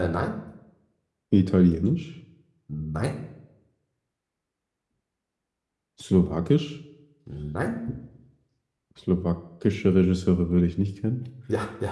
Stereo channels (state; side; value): identical; both; correlation 1.00